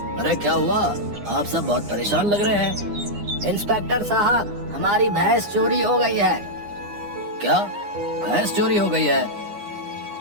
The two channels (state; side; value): late; left; 9.9 ms